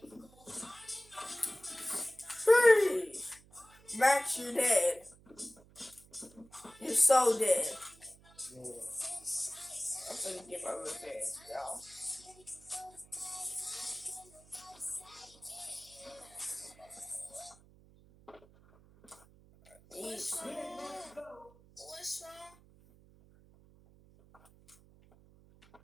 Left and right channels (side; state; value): right; noise; hum, 25 dB below the sound